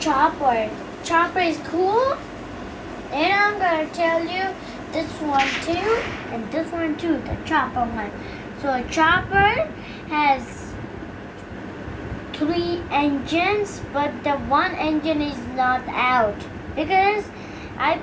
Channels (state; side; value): identical; both; correlation 1.00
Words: Chopper is cool, and I'm gonna tell you this one too, and this one too, the chopper one. So a chopper has 3 engines, but the one engine is not out because I